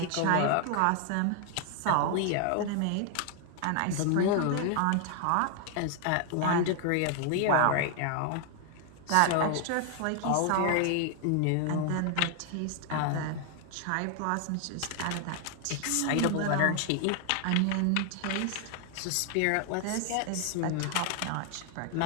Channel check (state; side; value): different; both; correlation 0.00